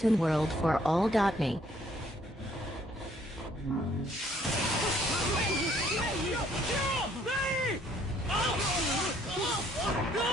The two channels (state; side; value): normal; both; correlation 0.64